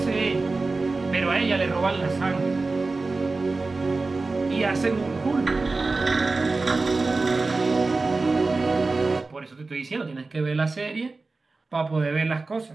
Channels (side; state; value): left; quieter; 3.7 dB